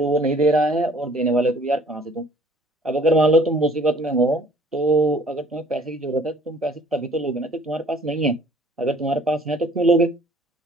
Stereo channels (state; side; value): normal; both; correlation 0.56